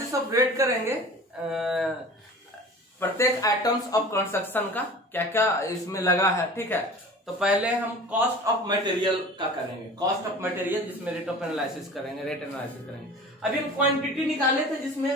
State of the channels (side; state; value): both; normal; correlation 0.40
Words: ऑफ रेट करेंगे प्रत्येक आइटम्स ऑफ कंस्ट्रक्शन का क्या क्या इसमें लगा है, ठीक है। तो पहले हम कॉस्ट ऑफ मटेरियल का करेंगे, कॉस्ट ऑफ मटेरियल जिसमें रेट ऑफ एनालिसिस करेंगे, रेट एनालिसिस करेंगे। अभी हम क्वांटिटी निकाले थे